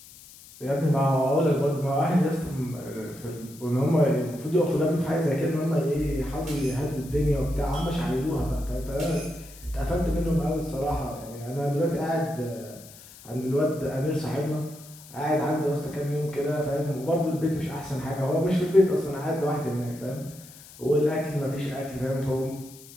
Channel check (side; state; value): left; noise; hiss, 20 dB below the sound